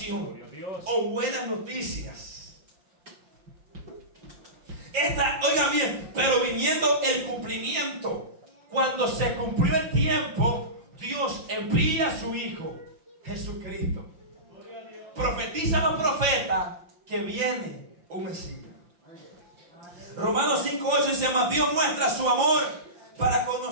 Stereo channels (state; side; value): late; left; 5.7 ms